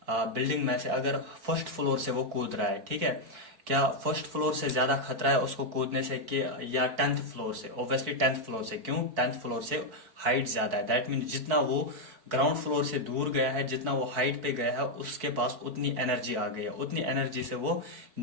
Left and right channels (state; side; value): late; left; 4.6 ms